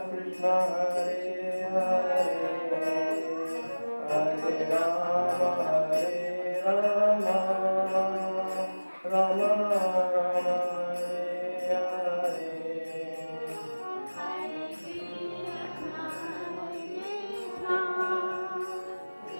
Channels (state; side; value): inverted; both; correlation -1.00